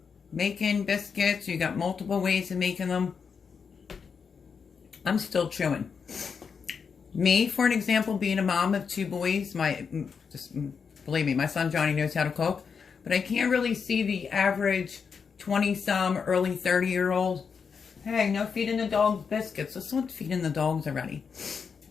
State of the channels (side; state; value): right; quieter; 6.0 dB